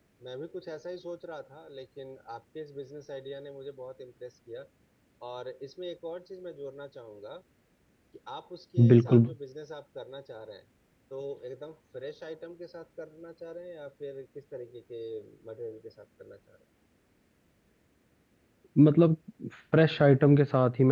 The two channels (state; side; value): identical; both; correlation 1.00